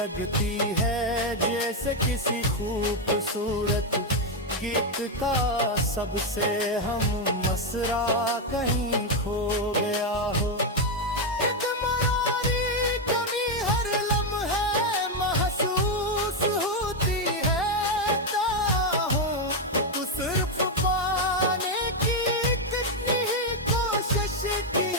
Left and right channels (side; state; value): both; normal; correlation 0.04